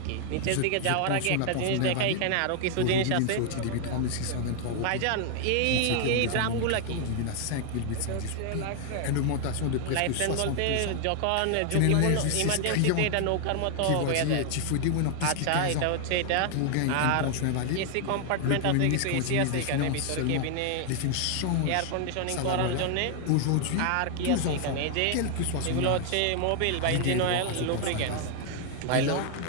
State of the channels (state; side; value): different; both; correlation 0.00